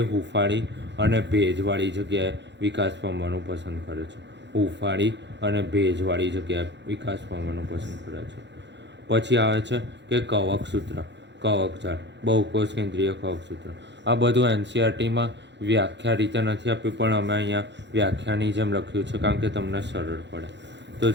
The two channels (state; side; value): late; left; 0.52 ms